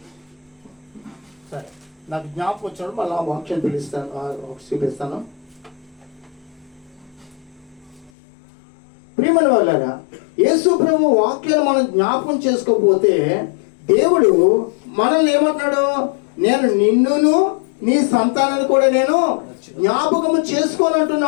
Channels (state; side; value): drops out; right; at 8.1 s